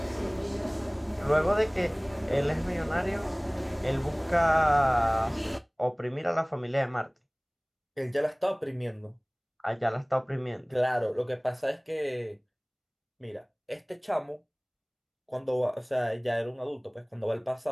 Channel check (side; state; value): both; identical; correlation 1.00